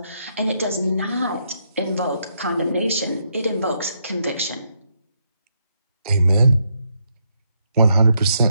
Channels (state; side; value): inverted; both; correlation -0.78